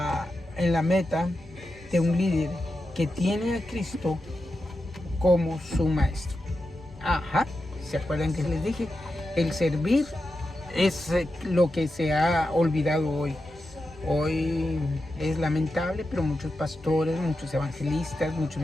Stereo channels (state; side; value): normal; both; correlation 0.89